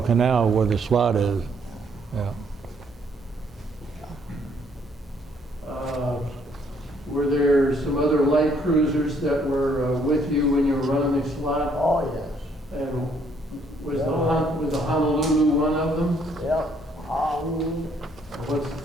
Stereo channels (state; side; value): normal; both; correlation 0.67